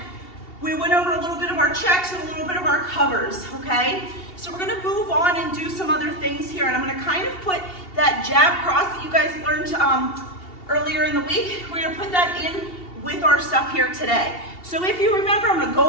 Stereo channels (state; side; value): late; right; 2.7 ms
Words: we went over a little bit of our checks and a little bit of our covers, okay? So we're gonna move on and do some other things here, and I'm gonna kind of put that jab cross that you guys learned earlier in the week, we're gonna put that in with our stuff here today. So if you remember, I'm gonna